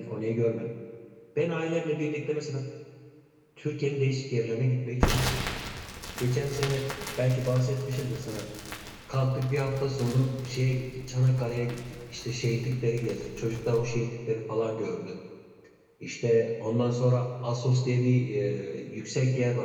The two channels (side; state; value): both; identical; correlation 1.00